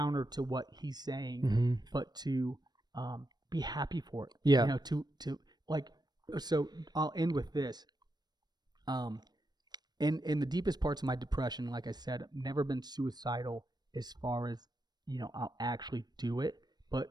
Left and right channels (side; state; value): left; late; 0.20 ms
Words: to what he's saying, but to be happy for it. Yeah. You know, to like. So I'll end with this. In the deepest parts of my depression, like I said, I've never been suicidal as far as, you know, I'll actually do it, but